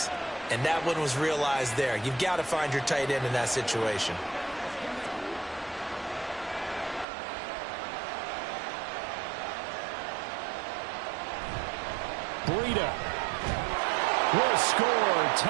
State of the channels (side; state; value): left; drops out; at 7.1 s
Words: and that one was realized there. You've got to find your tight end in that situation. Breida will score.